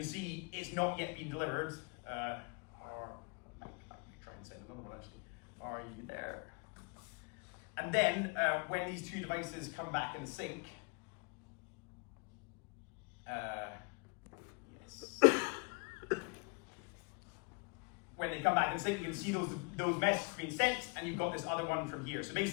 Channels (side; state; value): right; quieter; 33.4 dB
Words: see it's not yet been delivered. I can try and send another one actually. Are you there? And then when these two devices come back in sync, when they come back in sync, you can see those messages being sent, and you've got this other one from here. So